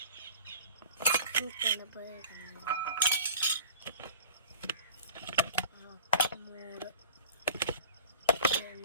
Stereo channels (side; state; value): both; inverted; correlation -0.42